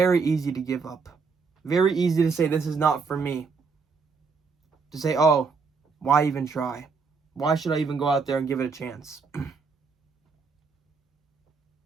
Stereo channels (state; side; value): quieter; left; 5.0 dB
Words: easy to give up. Very easy to say, this is not for me. To say, oh, why even try? Why should I even go out there and give it a chance?